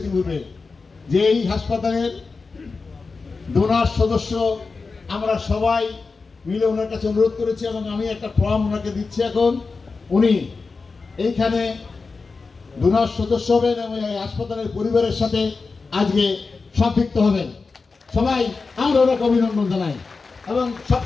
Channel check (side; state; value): right; quieter; 4.3 dB